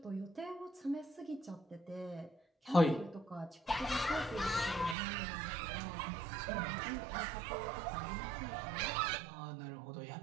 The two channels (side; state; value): left; drops out; at 5.0 s